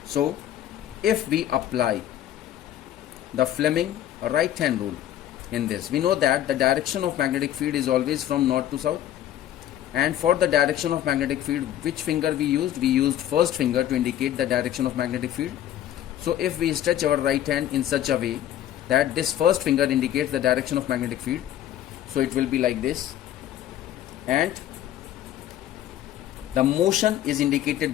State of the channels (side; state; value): right; quieter; 11.9 dB